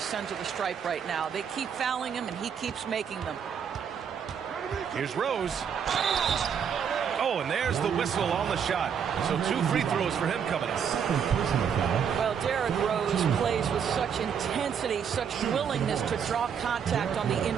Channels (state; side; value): quieter; left; 7.5 dB